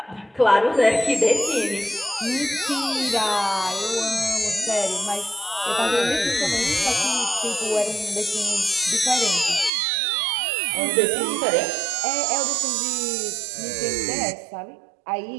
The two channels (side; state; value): left; drops out; at 9.7 s